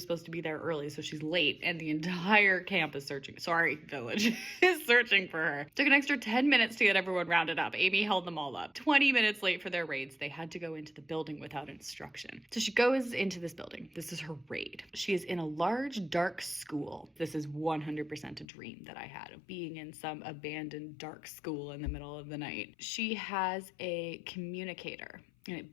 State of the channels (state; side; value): drops out; right; at 18.4 s